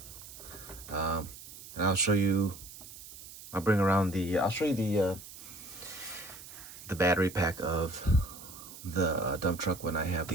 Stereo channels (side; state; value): right; noise; hiss, 15 dB below the sound